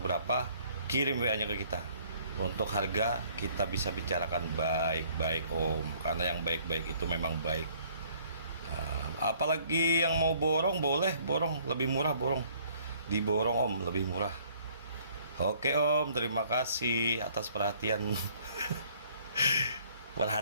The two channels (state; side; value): inverted; both; correlation -0.60